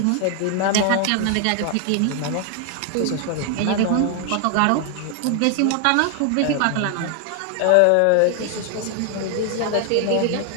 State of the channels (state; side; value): different; both; correlation 0.00